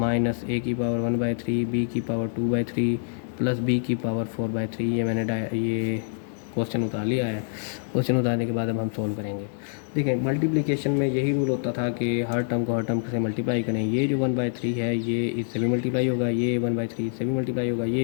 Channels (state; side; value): silent; right; digital silence